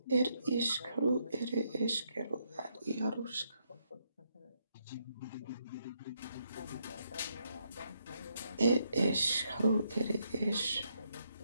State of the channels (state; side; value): inverted; both; correlation -0.77